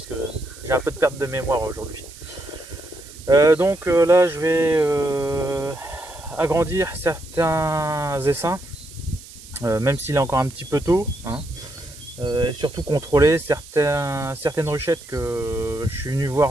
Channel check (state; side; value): noise; right; hiss, 18 dB below the sound